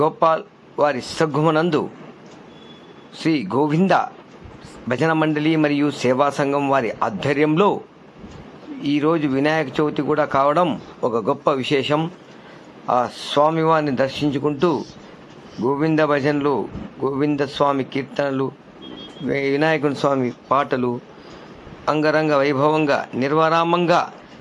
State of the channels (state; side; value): identical; both; correlation 1.00